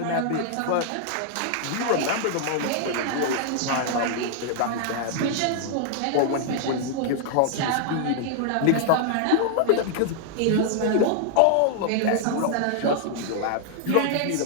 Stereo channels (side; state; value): both; different; correlation 0.00